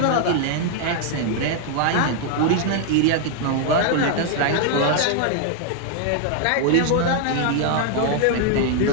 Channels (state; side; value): different; both; correlation 0.00